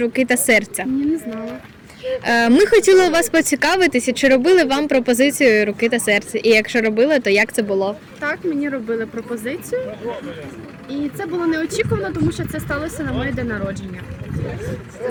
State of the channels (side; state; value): both; identical; correlation 1.00